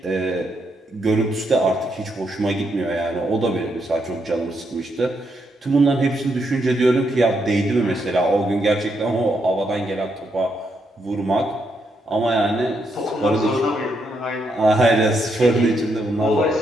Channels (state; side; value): normal; both; correlation 0.79